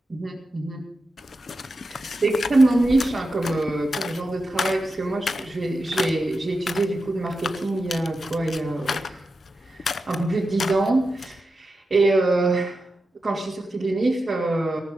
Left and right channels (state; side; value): normal; both; correlation 0.90